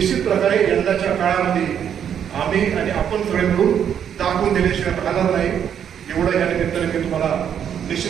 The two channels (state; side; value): quieter; left; 8.7 dB